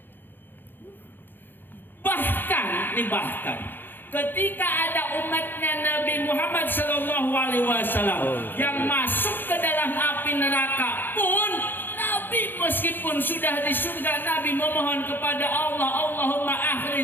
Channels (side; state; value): right; late; 0.096 ms